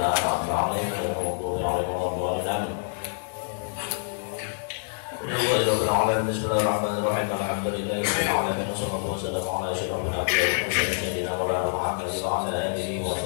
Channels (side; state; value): right; silent; digital silence